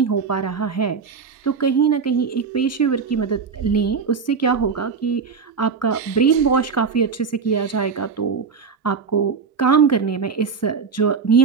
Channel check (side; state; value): left; quieter; 5.6 dB